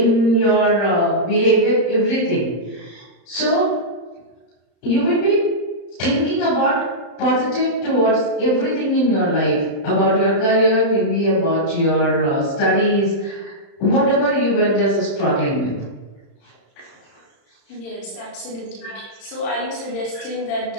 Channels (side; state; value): right; late; 35 ms